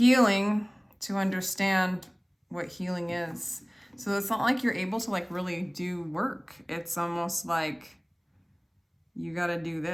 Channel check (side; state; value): both; identical; correlation 1.00